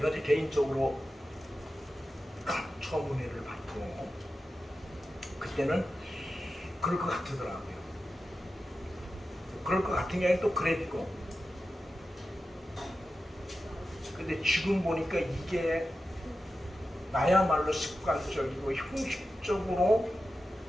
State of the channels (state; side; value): normal; both; correlation 0.92